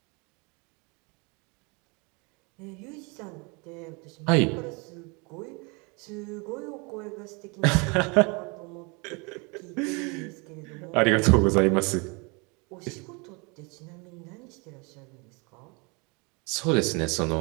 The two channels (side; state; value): left; quieter; 30.2 dB